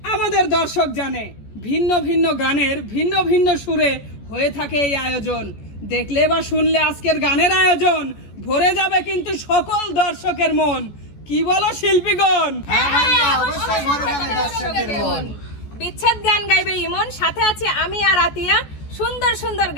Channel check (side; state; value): right; late; 14 ms